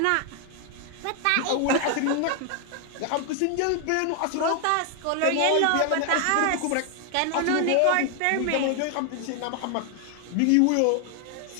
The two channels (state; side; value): different; both; correlation 0.00